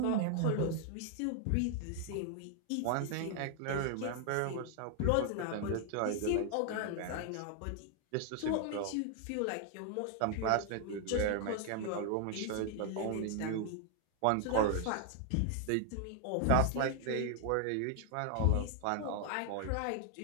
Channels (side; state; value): both; different; correlation 0.00